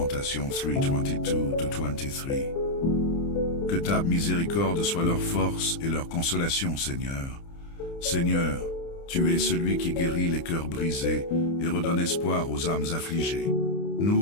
3:22-23. Que ta miséricorde soit leur force et leur consolation, Seigneur. Seigneur, tu es celui qui guérit les cœurs brisés et redonne espoir aux âmes affligées.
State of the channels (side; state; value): right; late; 30 ms